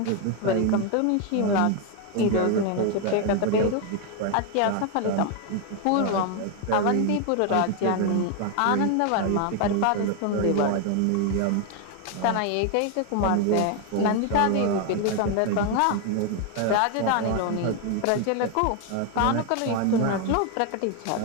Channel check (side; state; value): both; different; correlation 0.01